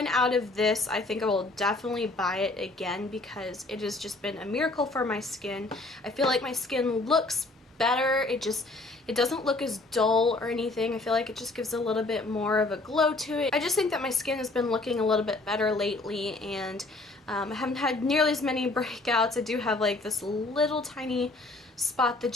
out of this, I think I will definitely buy it again because it has just been a miracle for my skin. I feel like my skin looks better. It doesn't look as dull or anything. I feel like it just gives a little bit more of a glow to it. I just think that my skin has been looking a little bit better lately, and I haven't had nearly as many breakouts. I do have like this little tiny spot that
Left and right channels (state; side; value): quieter; right; 3.1 dB